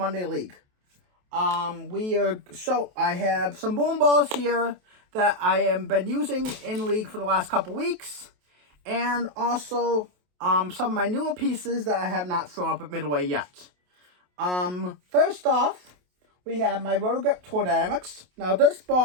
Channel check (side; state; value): left; late; 28 ms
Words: League. I have some bowling balls here that I have been using in League for the last couple weeks, and also some of my newer pieces that I have not thrown up at Midway yet. First off, we have my Rotogrip Tour Dynamics. Now this